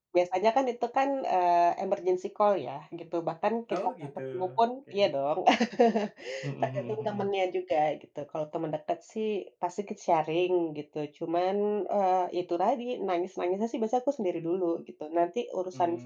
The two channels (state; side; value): identical; both; correlation 1.00